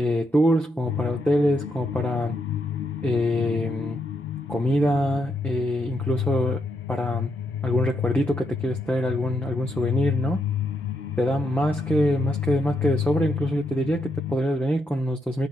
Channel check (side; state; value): both; normal; correlation 0.79